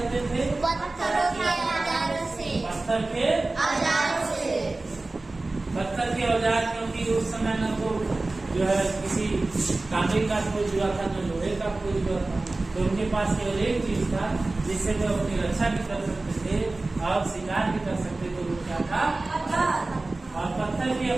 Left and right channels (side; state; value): left; quieter; 3.1 dB